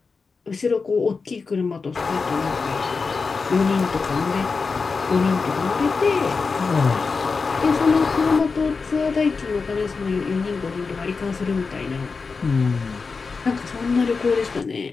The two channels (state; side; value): quieter; right; 4.6 dB